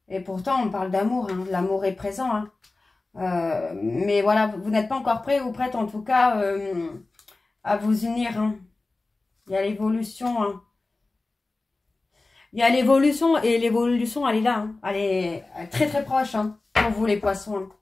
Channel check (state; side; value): quieter; right; 3.3 dB